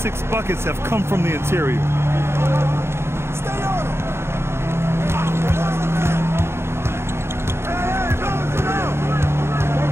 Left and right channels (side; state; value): left; late; 0.12 ms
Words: 6 buckets have come from the interior.